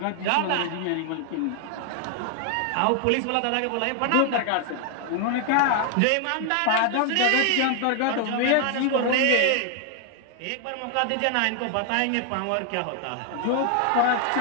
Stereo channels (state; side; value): different; both; correlation 0.00